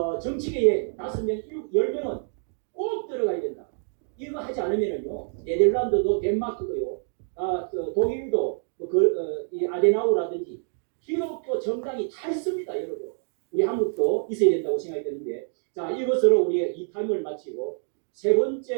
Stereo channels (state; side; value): silent; left; 61 dB below the other